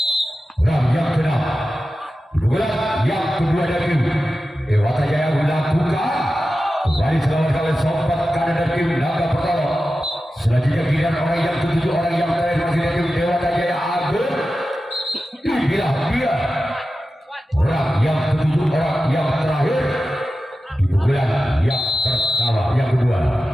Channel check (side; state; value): both; normal; correlation 0.93